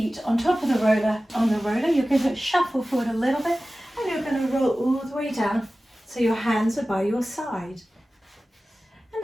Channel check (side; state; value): both; normal; correlation 0.96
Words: on top of the roller, You're going to shuffle forward a little bit, and you're going to roll all the way down so your hands are by your side. And